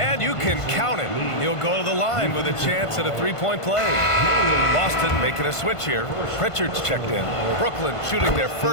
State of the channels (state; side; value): late; right; 1.5 ms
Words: you can count it. He'll go to the line with a chance at a 3-point play. Boston making a switch here. Pritchard's checked in. Brooklyn shooting their